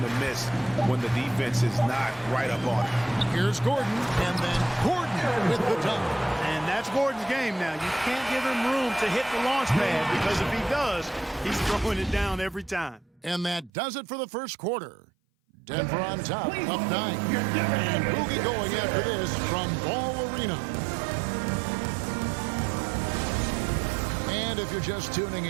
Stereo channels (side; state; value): left; drops out; at 13.7 s